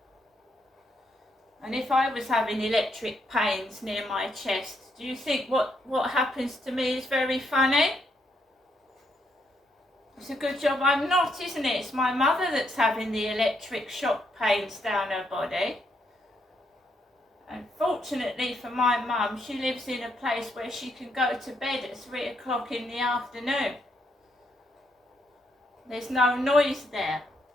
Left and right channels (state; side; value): normal; both; correlation 0.76